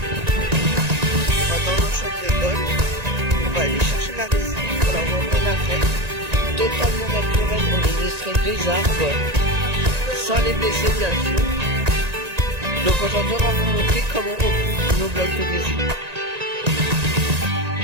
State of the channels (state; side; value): late; left; 1.9 ms